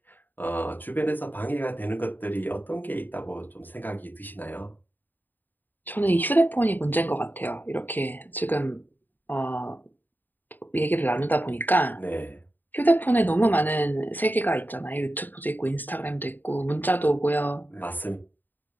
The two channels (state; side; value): late; right; 0.089 ms